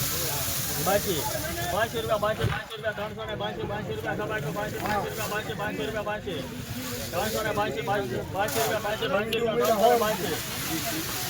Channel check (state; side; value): identical; both; correlation 1.00